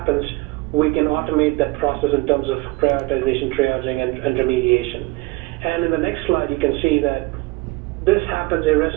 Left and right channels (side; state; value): left; quieter; 22.4 dB